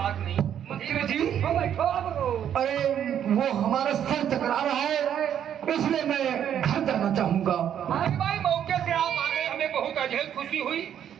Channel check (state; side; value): quieter; left; 9.6 dB